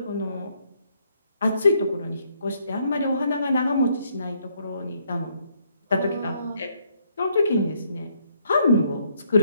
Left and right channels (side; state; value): both; inverted; correlation -0.71